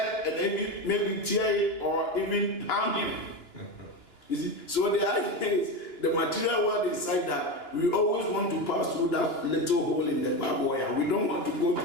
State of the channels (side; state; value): right; late; 3.0 ms